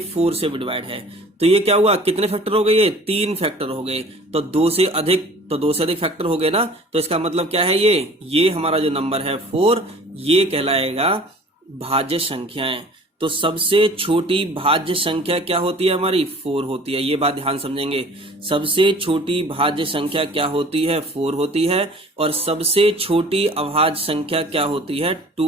4 से भी डिवाइड है, तो ये क्या हुआ? कितने फैक्टर हो गए? ये 3 फैक्टर हो गए। तो 2 से अधिक, तो 2 से अधिक फैक्टर हो गए ना, तो इसका मतलब क्या है? ये हमारा जो नंबर है 4, ये कहलाएगा भाज्य संख्याएं। तो सबसे छोटी भाज्य संख्या क्या होती है? हमारी 4 होती है। ये बात ध्यान समझेंगे, सबसे छोटी भाज्य संख्या क्या होती है? 4 होती है। और सबसे छोटी अभाज्य संख्या क्या होती है? 2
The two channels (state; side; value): normal; both; correlation 0.47